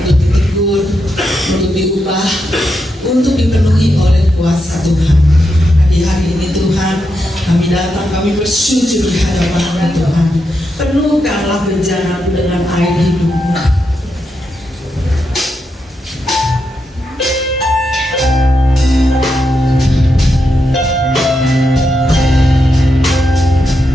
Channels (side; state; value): both; normal; correlation 0.84